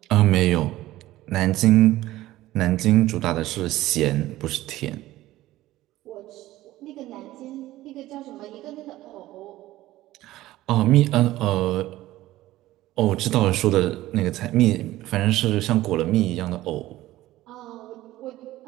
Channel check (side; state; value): left; quieter; 16.0 dB